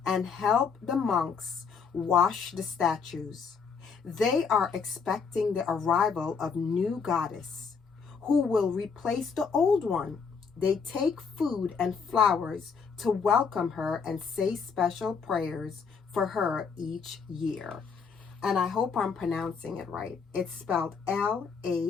and help the monks wash the statues. They are expecting the arrival of new goddess who will replace the old one. They take food and flowers to welcome her and say special prayers for her each year. And I hope I'm pronouncing it right. It's spelled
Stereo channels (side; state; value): right; quieter; 5.7 dB